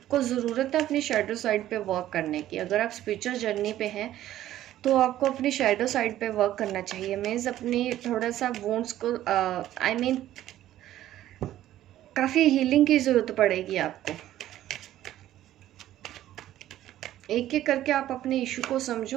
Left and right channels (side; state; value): left; quieter; 13.2 dB